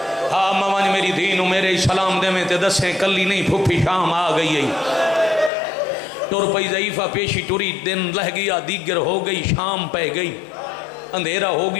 ہاں موان میری دینو میرے سلام دے میں تے دسیں کلی نہیں پھپھی شام آ گئی ہے، ٹر پئی ضعیفہ پیشی ٹری دن لہ گیا دیگر ہو گئی شام پہ گئی اندھیرا ہو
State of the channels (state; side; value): drops out; right; at 5.5 s